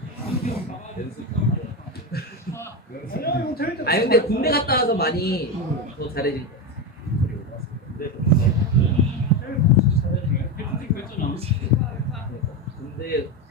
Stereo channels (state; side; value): normal; both; correlation 0.15